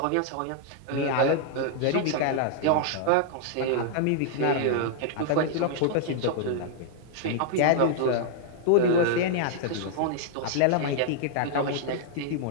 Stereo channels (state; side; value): different; both; correlation -0.01